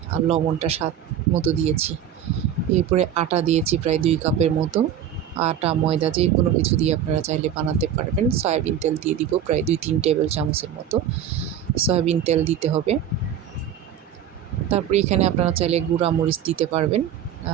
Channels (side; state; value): left; quieter; 9.4 dB